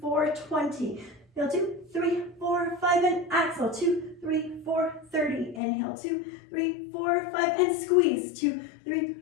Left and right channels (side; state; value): right; drops out; at 5.6 s